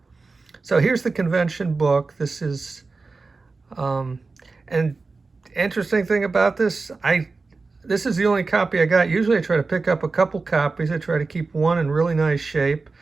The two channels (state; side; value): quieter; left; 4.0 dB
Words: So here's the convention book. This is, and interesting thing about this, this is the only copy I got. Usually I try to pick up a couple copies. I try to keep one in really nice shape.